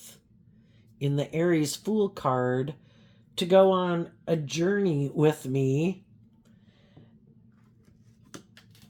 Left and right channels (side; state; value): both; identical; correlation 1.00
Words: in the Aries Fool card to go on a journey with me.